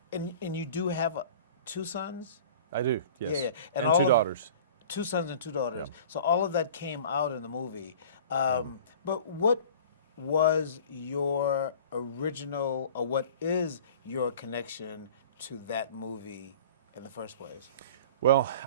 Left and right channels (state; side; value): inverted; both; correlation -0.44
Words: and you do have 2 sons? I do, yes. Yeah. And 2 daughters. 2 sons and 2 daughters. Yeah. So all of that came out in the movie. But what was your original, or what is your connection to that movie in the first place? Well,